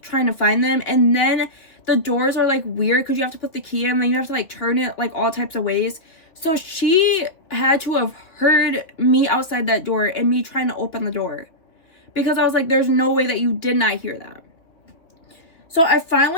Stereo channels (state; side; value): late; right; 2.7 ms